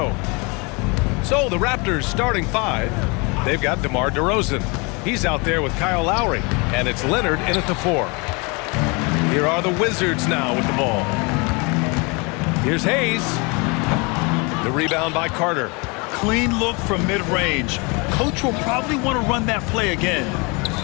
So the Raptors starting 5. They've got DeMar DeRozan. He's out there with Kyle Lowry. And it's Leonard in at the 4. Here are the Wizards now with the ball. Here's Hayes. The rebound by Carter. Clean look from mid-range. Coach will probably want to run that play again.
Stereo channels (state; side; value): quieter; right; 29.4 dB